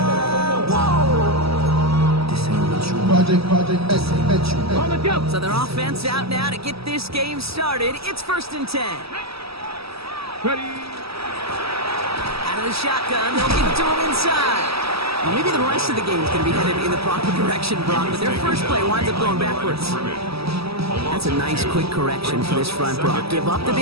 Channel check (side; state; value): left; late; 0.77 ms